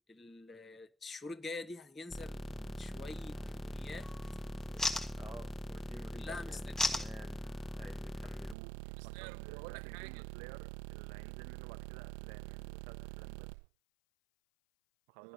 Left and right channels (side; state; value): left; drops out; at 8.6 s